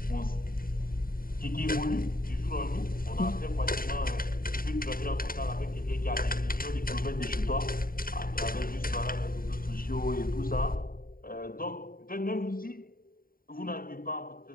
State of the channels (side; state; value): right; late; 0.42 ms